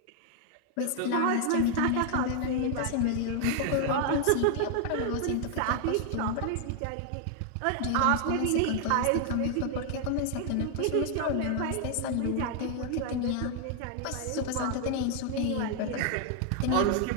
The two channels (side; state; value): both; different; correlation 0.00